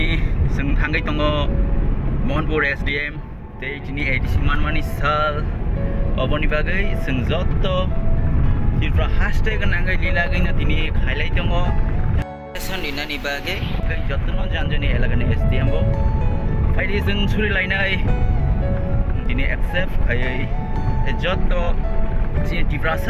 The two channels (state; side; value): identical; both; correlation 1.00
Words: Sung Hangai Tongo, Monpur SDM, Day Tini Edisi Manwani Sal, Oboni Bagai, Sung Zotto, Hilfra Hashtag and Angai Lilagin at Tini, Highlight Tongo, Sandina Nibage, Jotono Janjani Elegan SDM. Friday Sung Suri Lainai, Tini accept, I Jotto,